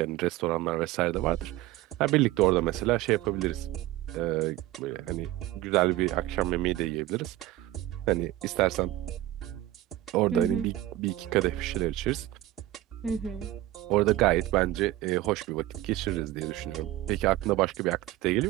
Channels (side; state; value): left; quieter; 15.6 dB